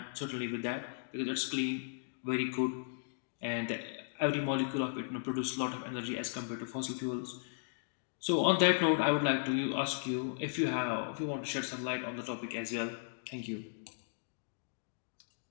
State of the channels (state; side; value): silent; right; digital silence